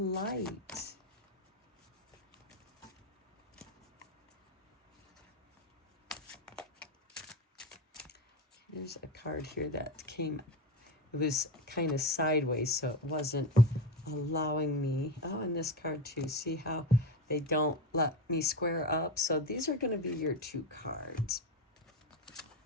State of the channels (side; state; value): both; normal; correlation 0.19